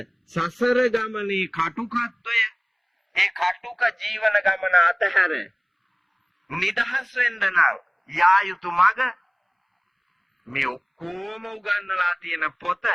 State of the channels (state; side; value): identical; both; correlation 1.00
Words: සසර ගමනේ කටුකත්වය, ඒ කටුක ජීවන ගමන අතහැර නිදහස් වෙන්න නම් යා යුතු මඟ මේ ඔක්කොම උගන්වලා තියෙන පොත